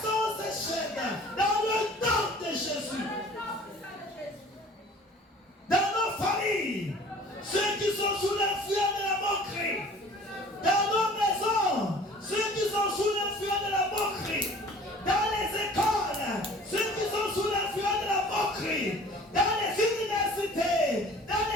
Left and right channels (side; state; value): both; normal; correlation 0.48